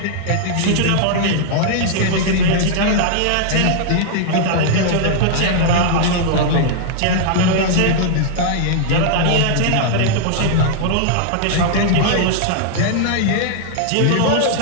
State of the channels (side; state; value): both; different; correlation -0.01